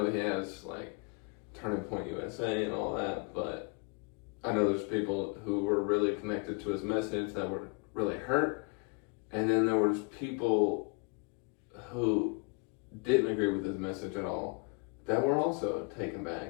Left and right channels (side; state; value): right; quieter; 33.2 dB